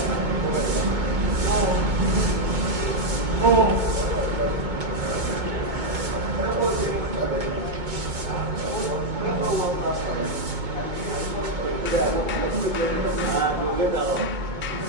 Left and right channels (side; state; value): left; late; 2.2 ms